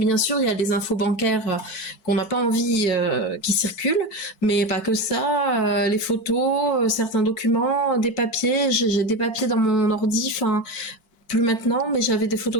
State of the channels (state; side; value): late; right; 4.6 ms